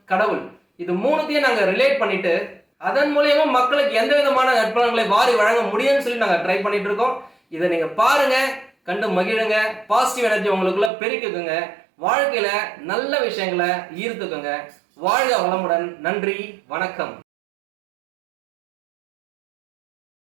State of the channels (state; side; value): drops out; left; at 10.9 s